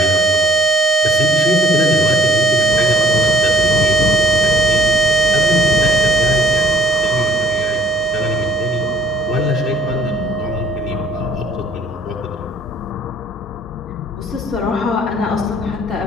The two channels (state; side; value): normal; both; correlation 0.58